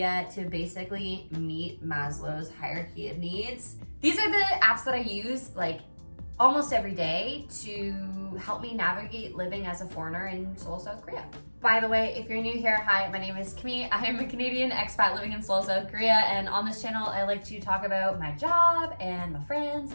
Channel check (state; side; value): inverted; both; correlation -1.00